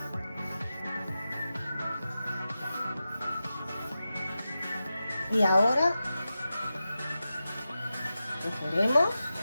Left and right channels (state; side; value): inverted; both; correlation -0.92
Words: Y ahora cogeremos